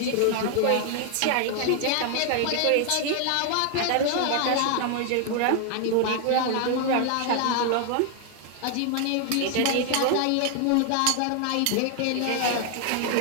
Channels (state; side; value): different; both; correlation 0.00